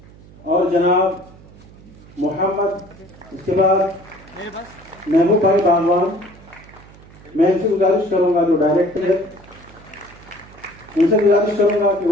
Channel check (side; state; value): right; noise; hum, 22 dB below the sound